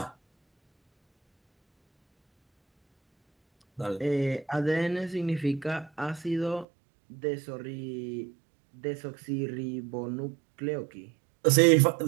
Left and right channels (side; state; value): left; drops out; at 6.7 s